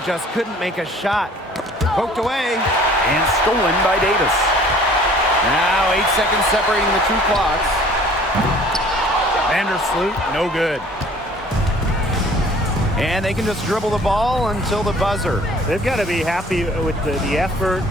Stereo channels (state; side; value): normal; both; correlation 0.52